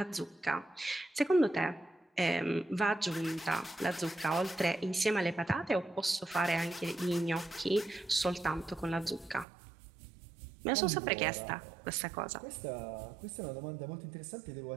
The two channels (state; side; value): drops out; left; at 9.5 s